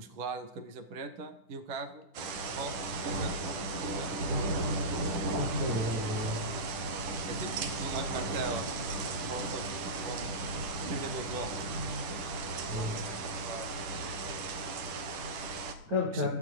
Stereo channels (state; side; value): late; left; 10 ms